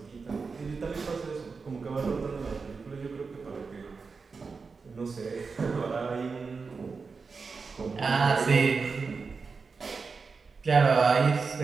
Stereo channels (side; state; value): left; quieter; 4.8 dB